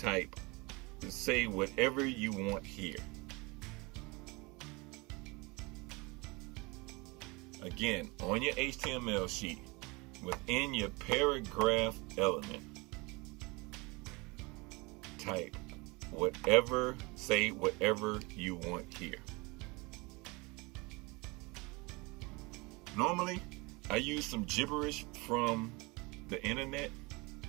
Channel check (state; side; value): quieter; left; 26.2 dB